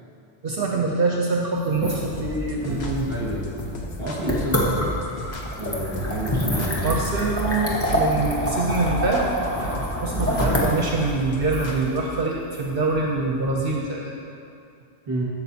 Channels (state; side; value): normal; both; correlation 0.03